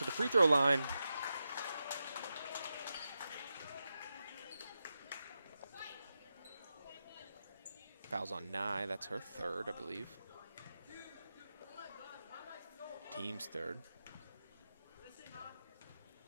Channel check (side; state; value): both; inverted; correlation -0.90